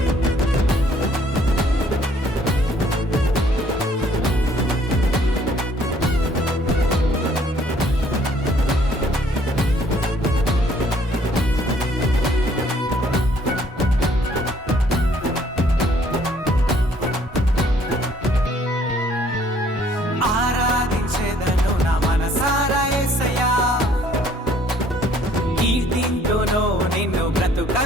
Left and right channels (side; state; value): both; normal; correlation 0.61